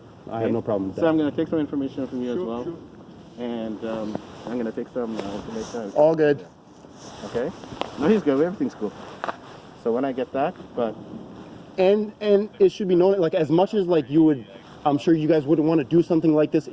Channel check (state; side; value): identical; both; correlation 1.00